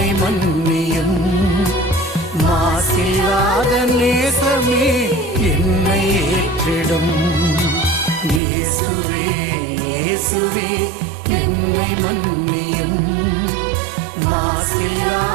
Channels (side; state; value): left; drops out; at 8.4 s